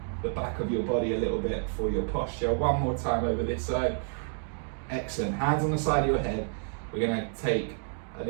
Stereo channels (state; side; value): silent; left; 58 dB below the other